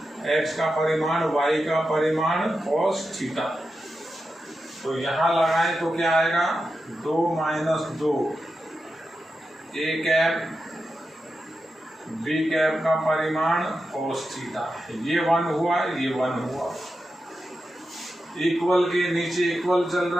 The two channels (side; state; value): both; normal; correlation 0.90